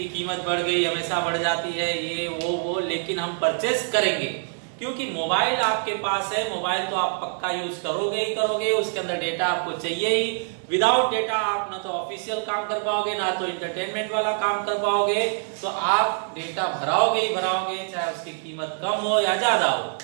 कीमत बढ़ गई, हमेशा बढ़ जाती है, ये वो, लेकिन हम परचेज करेंगे क्योंकि मोबाइल आपके पास है। मोबाइल तो आप पक्का यूज करोगे ही करोगे, उसके अंदर डेटा आपको चाहिए ही। विदाउट डेटा आप ना तो ऑफिशियल काम कर पाओगे, ना तो एंटरटेनमेंट वाला काम कर पाओगे, तो आप डेटा भराओगे ही भराओगे, चाहे उसकी कीमत कम हो या ज्यादा हो।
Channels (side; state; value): left; silent; 62 dB below the other